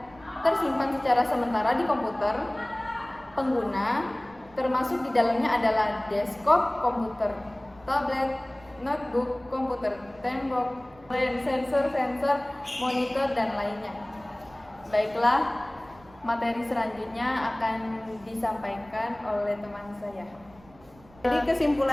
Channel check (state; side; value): noise; right; rumble, 25 dB below the sound